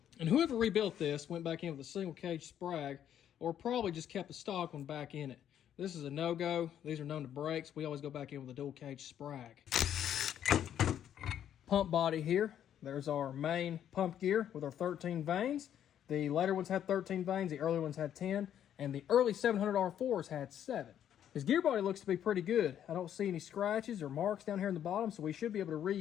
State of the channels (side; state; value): right; quieter; 10.1 dB